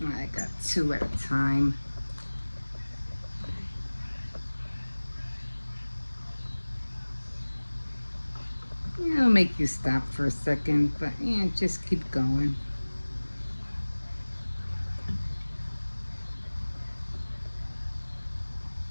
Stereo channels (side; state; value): both; inverted; correlation -1.00